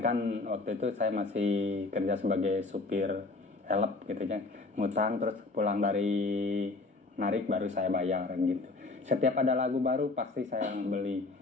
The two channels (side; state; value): right; quieter; 3.5 dB